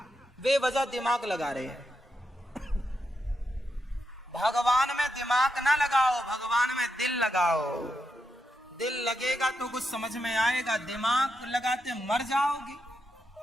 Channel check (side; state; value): both; normal; correlation 0.84